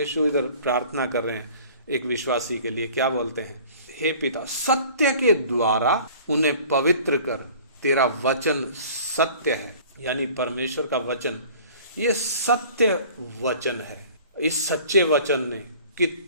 इधर प्रार्थना कर रहे हैं एक विश्वासी के लिए, क्या बोलते हैं? हे पिता, सत्य के द्वारा उन्हें पवित्र कर, तेरा वचन सत्य है। यानी परमेश्वर का वचन ये सत्य वचन है। इस सच्चे वचन ने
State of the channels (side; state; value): both; inverted; correlation -0.47